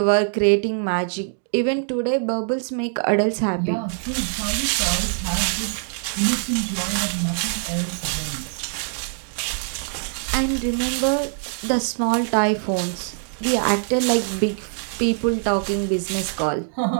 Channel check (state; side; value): silent; left; 63 dB below the other